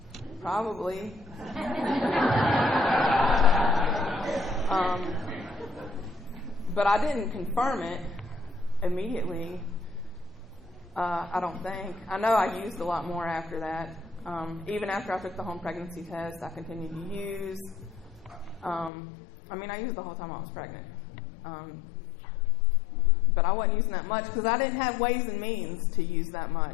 probably. But I didn't confirm it immediately, I don't think. I know I used a lot more after that. Even after I took the home pregnancy test, I continued to use. I used the whole time I was pregnant. But I wasn't using that much because I didn't have ways and means to use that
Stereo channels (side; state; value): right; drops out; at 18.9 s